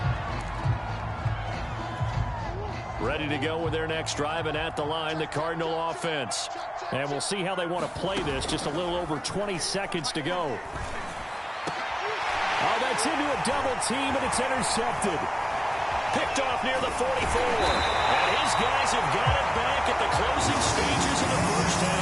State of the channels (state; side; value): identical; both; correlation 1.00